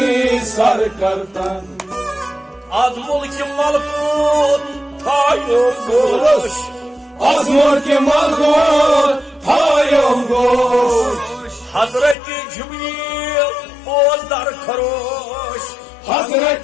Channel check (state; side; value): drops out; right; at 12.2 s